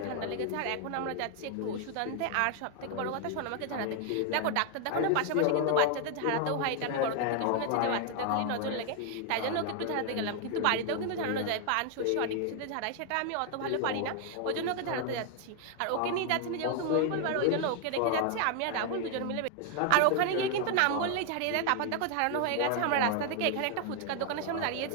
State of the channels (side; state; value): both; different; correlation 0.00